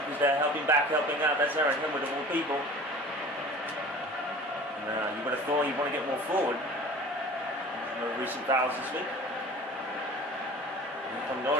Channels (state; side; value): normal; both; correlation 0.42